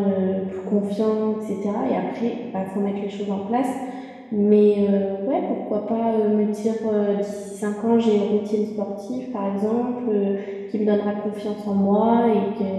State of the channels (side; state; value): both; identical; correlation 1.00